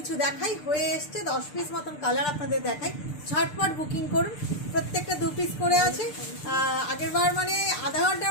দেখাই, হয়ে এসছে 10 পিস মতন কালার আপনাদের দেখাই। ঝটপট বুকিং করুন, প্রত্যেকটা 2 পিস করে আছে। আগেরবার মানে আধা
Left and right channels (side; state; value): right; late; 6.8 ms